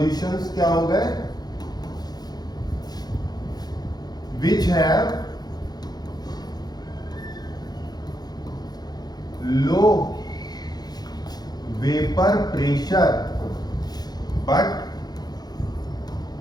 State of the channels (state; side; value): late; right; 0.19 ms